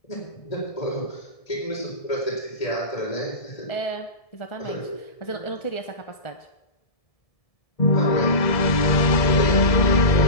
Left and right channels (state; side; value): late; right; 1.7 ms